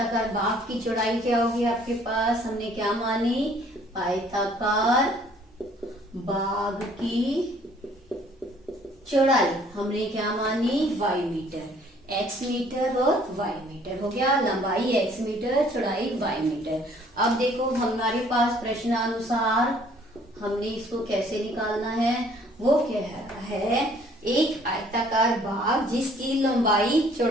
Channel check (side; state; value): both; normal; correlation 0.58